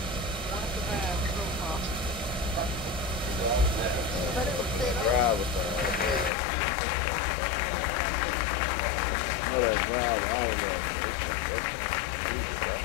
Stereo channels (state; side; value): drops out; right; at 6.3 s